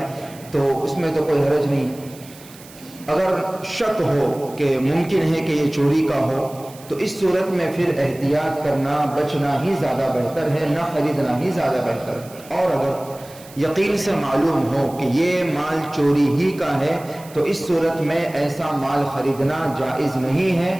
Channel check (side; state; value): right; noise; hiss, 21 dB below the sound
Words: تو اس میں تو کوئی حرج نہیں۔ اگر شک ہو کہ ممکن ہے کہ یہ چوری کا ہو تو اس صورت میں پھر احتیاط کرنا، بچنا ہی زیادہ بہتر ہے، نہ خریدنا ہی زیادہ بہتر ہے۔ اور اگر یقین سے معلوم ہو کہ یہ مال چوری ہی کا ہے تو اس صورت میں ایسا مال خریدنا جائز نہیں ہے،